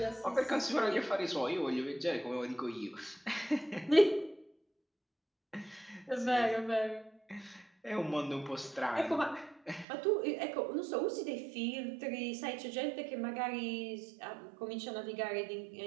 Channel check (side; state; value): left; drops out; at 9.9 s